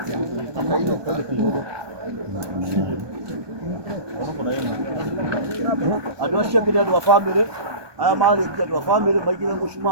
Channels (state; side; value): late; left; 1.2 ms